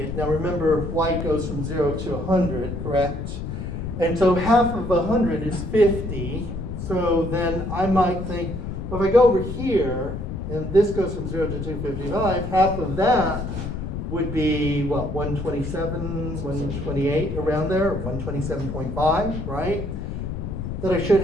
Now remember, white goes from 0 to 100, correct? And so half of 100 is 50. So then I might think, well, if I go over here, and this goes from 0 to 255, half of that would be, what, 127, 128, around there, 127.5, right? That I should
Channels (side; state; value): left; noise; rumble, 5 dB below the sound